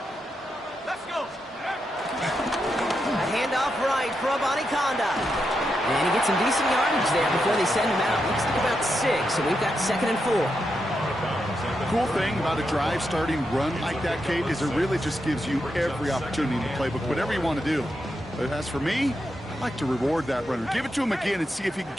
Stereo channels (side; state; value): both; normal; correlation 0.85